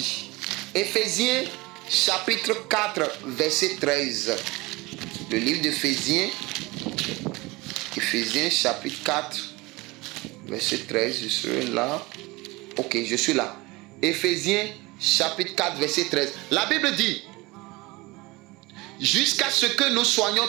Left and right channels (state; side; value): quieter; left; 22.8 dB